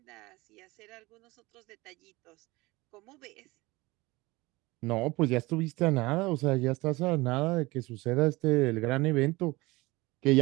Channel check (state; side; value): quieter; left; 21.7 dB